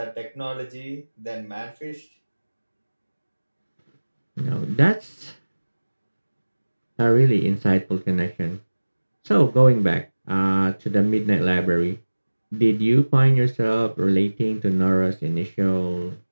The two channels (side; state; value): both; inverted; correlation -1.00